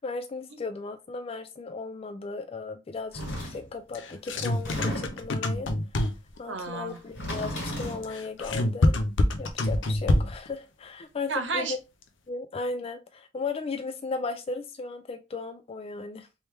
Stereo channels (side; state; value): both; normal; correlation 0.66